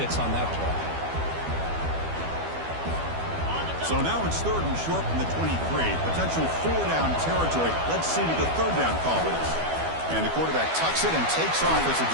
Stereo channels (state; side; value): late; left; 12 ms